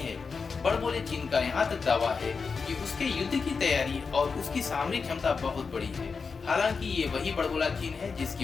बड़बोले चीन का यहाँ तक दावा है कि उसके युद्ध की तैयारी और उसकी सामरिक क्षमता बहुत बड़ी है। हालांकि ये वही बड़बोला चीन है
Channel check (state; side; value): quieter; right; 5.1 dB